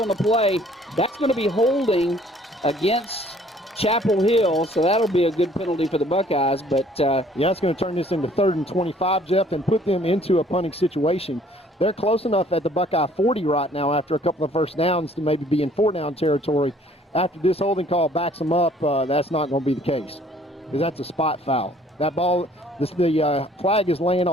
the play. That's going to be holding against Chapel Hill, so that'll be a good penalty for the Buckeyes. But yeah, it's going to turn this into 3rd and 25, Jeff, and put them into a punting situation. They're close enough at the Buckeye 40 right now after a couple of first downs to maybe be in 4-down territory. After this holding call backs them up, that's not going to be the case, because that's a spot foul. That ball, the flag is laying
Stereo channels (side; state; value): both; normal; correlation 0.58